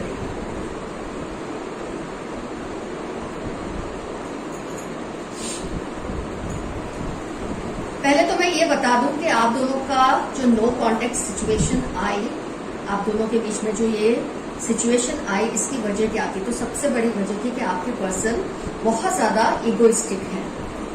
पहले तो मैं ये बता दूं कि आप दोनों का जो नो कॉन्टेक्ट सिचुएशन आई, आप दोनों के बीच में जो ये सिचुएशन आई, इसकी वजह क्या थी? तो सबसे बड़ी वजह थी कि आपके पर्सन बहुत ज्यादा इगोइस्टिक है,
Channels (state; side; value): identical; both; correlation 1.00